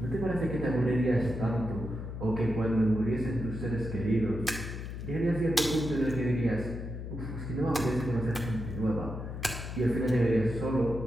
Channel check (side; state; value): left; noise; hum, 7 dB below the sound